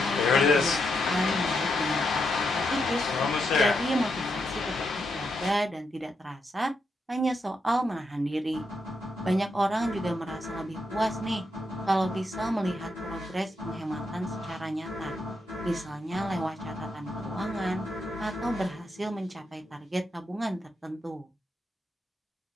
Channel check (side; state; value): both; normal; correlation 0.81